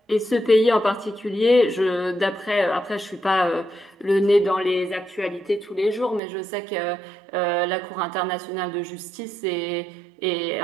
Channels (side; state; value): left; drops out; at 6.2 s